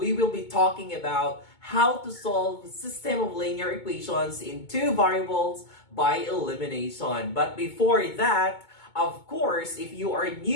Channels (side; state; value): right; late; 2.2 ms